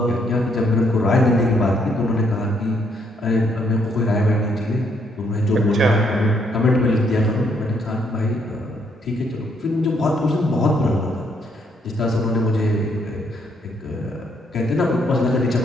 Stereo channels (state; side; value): normal; both; correlation 0.72